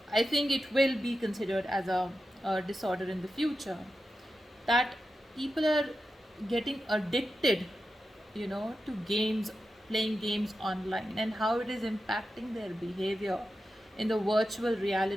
I think it will be considered as a disorder in the future. That people are getting addicted, to games, playing games online, and how it is impacting their behavior in the virtual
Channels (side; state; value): both; normal; correlation 0.90